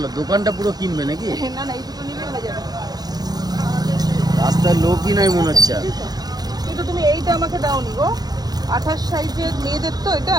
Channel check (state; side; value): late; left; 0.19 ms